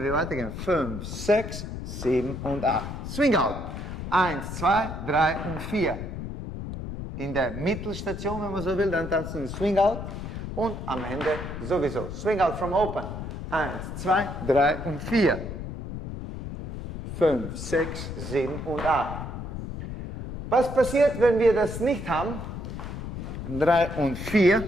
wir weitergehen, 5, 6, 7 und 8. Swing out. 1, 2, 3 und 4. In der Mittelstation, wenn man so will, dann tanzen wir Swing out und am Ende sowieso. Swing out from open. 1, 2, 3 und 4. 5, 6, 7 und 8. Was passiert, wenn wir das nicht haben? 3 und 4.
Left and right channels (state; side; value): noise; left; rumble, 7 dB below the sound